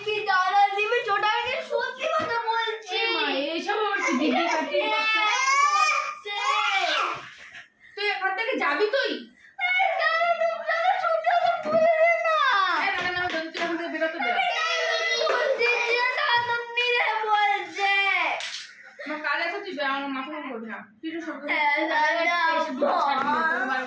দাদা দিবে ছোটাকে সত্যি কথা বলছি। এইসব আমার কি দিদি কাটি তুই এখান থেকে যাবি? তুই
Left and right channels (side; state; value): both; identical; correlation 1.00